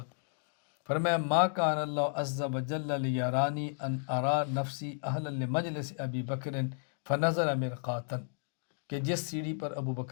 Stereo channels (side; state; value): right; silent; digital silence